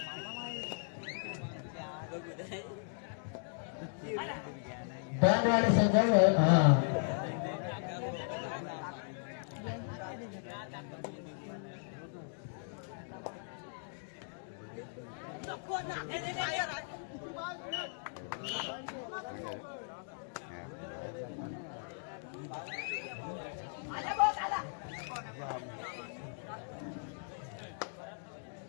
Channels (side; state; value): right; silent; digital silence